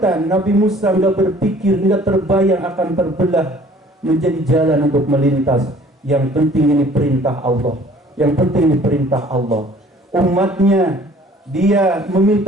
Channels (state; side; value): normal; both; correlation 0.53